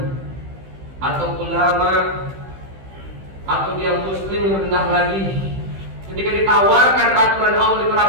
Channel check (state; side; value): late; left; 15 ms